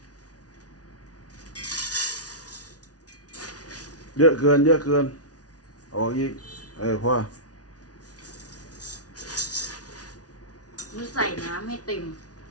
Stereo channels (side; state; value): right; late; 0.68 ms